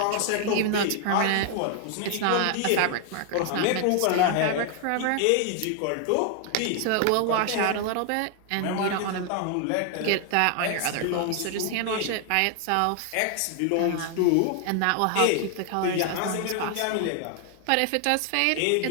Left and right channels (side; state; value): both; different; correlation 0.00